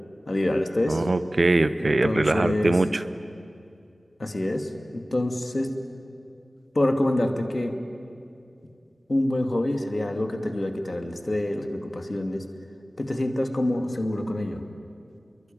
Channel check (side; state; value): both; normal; correlation 0.97